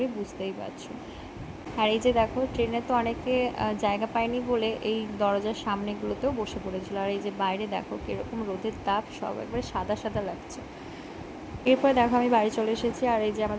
বুঝতেই পারছো। আর এই যে দেখো, ট্রেনে তো অনেকে জায়গা পায়নি বলে এই দরজার সামনেগুলোতেও বসে পড়েছিল। আর এই যে বাইরে দেখো কীরকম রোদের তাপ, সব একবারে সাদা সাদা লাগছে। এরপরে দেখো আমি বাড়ি চলে এসেছি, আর এই যে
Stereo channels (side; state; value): both; identical; correlation 1.00